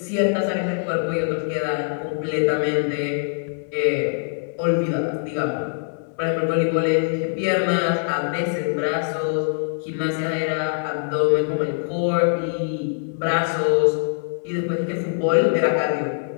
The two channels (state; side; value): silent; right; 63 dB below the other